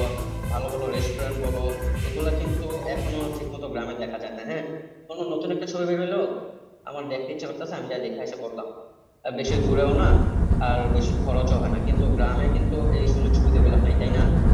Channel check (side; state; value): both; identical; correlation 1.00